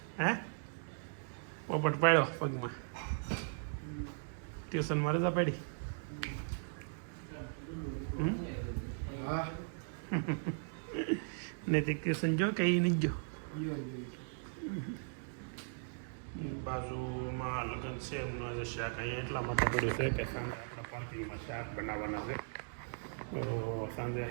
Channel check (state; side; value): silent; left; digital silence